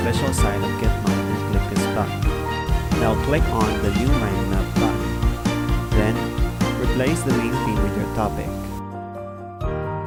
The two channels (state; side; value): identical; both; correlation 1.00